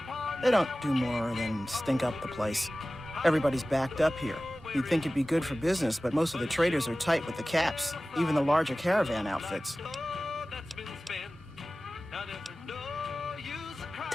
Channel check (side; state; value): both; normal; correlation 0.97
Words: they don't do more than stink up the place. Everybody's backed up here. You'd think it'd be good for business, but most of the traders are tight with the caps, even the larger caravan outfits.